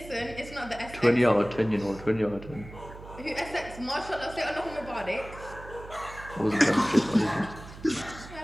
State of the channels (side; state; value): right; noise; hum, 15 dB below the sound